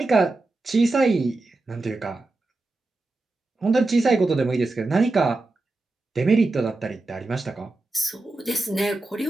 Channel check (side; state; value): left; quieter; 3.1 dB